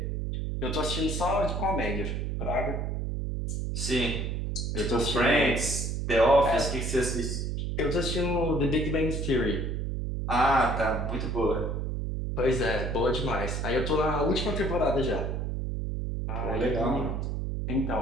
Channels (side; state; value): right; noise; hum, 2 dB below the sound